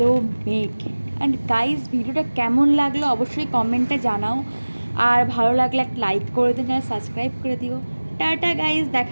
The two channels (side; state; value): both; inverted; correlation -1.00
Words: মেঘ। অ্যান্ড গাইজ ভিডিওটা কেমন লাগলো অবশ্যই কমেন্টে জানাও, আর ভালো লাগলে একটা লাইক করে দিও, চ্যানেল সাবস্ক্রাইব করে দিও। টাটা গাইজ,